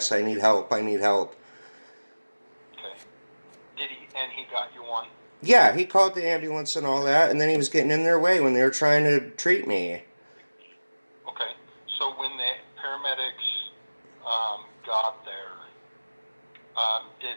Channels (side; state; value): both; inverted; correlation -1.00